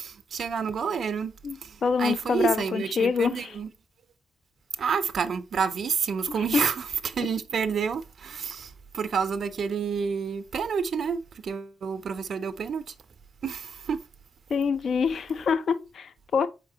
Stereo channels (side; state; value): both; normal; correlation 0.77